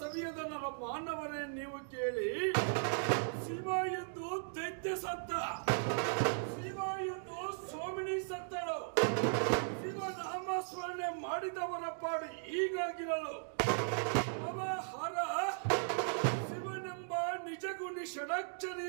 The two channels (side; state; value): left; silent; digital silence